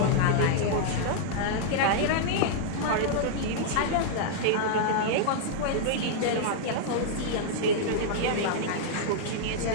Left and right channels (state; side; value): different; both; correlation -0.01